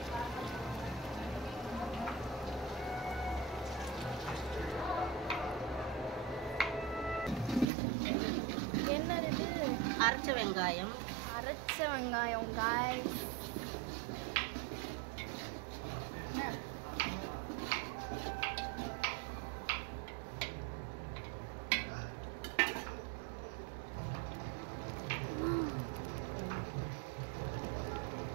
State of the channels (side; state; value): left; drops out; at 7.7 s